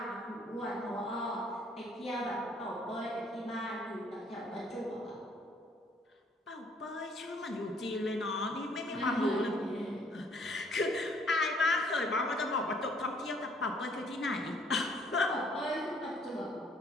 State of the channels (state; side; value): normal; both; correlation 0.62